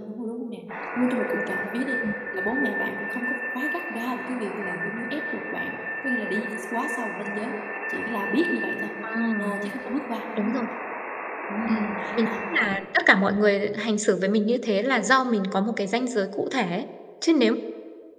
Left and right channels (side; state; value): both; identical; correlation 1.00